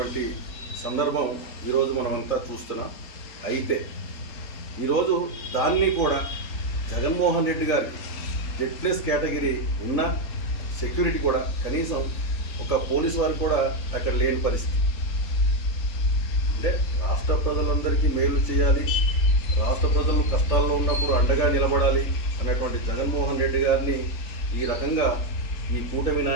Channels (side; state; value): right; late; 3.9 ms